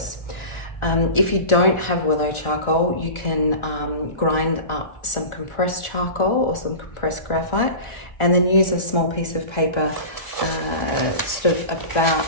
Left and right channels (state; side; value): late; right; 1.4 ms